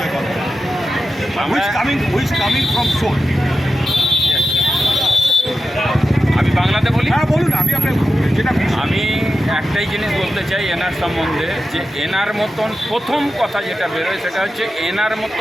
Karmukar? Who is coming from Seoul? আমি বাংলাতে বলি। হ্যাঁ বলুন, আমি আপনার যেটা আমি একটাই জিনিস বলতে চাই এনার সম্বন্ধে, যে এনার মতন প্রথম কথা যেটা বেরোয় সেটা হচ্ছে এনার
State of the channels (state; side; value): normal; both; correlation 0.91